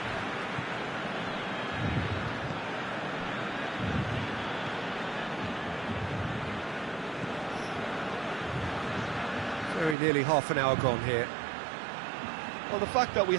Very nearly half an hour gone here. Well, the fact that we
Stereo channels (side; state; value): left; drops out; at 10.0 s